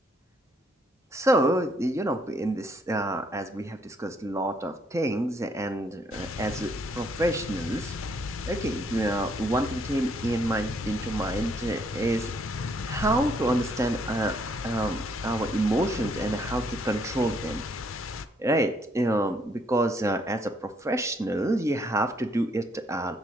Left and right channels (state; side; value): normal; both; correlation 0.69